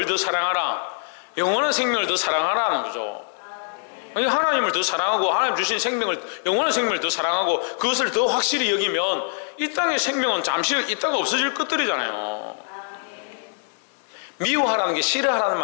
더 사랑하라? 영원한 생명을 더 사랑하라는 거죠. 하나님을 더 사랑하고 하나님 주신 생명을, 영원한 생명을 더 사랑하고 그것을 더 확실히 여기면 이 땅의 생명은 잠시 있다가 없어질 것들이잖아요. 미워하라는 게 싫어하라는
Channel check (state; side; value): silent; right; digital silence